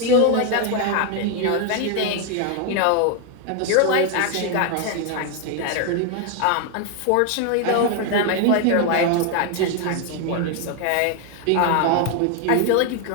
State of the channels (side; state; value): both; different; correlation 0.01